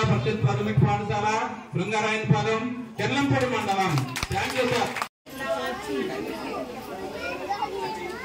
పరిషత్ ప్రాథమిక పాఠశాల శృంగారాయనపాలెం కెర్లంపూడి మండలం. Thank you sir.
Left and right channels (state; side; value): identical; both; correlation 1.00